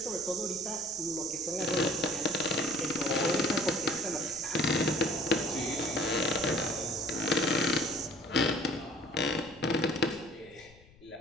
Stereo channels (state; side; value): noise; left; rumble, 25 dB below the sound